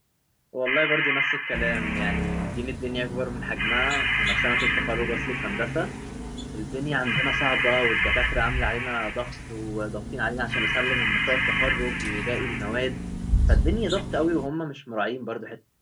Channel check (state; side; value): identical; both; correlation 1.00